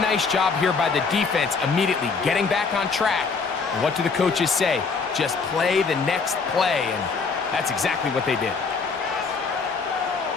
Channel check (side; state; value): right; quieter; 4.8 dB